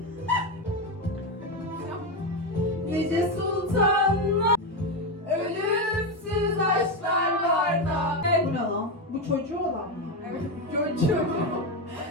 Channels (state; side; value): normal; both; correlation 0.11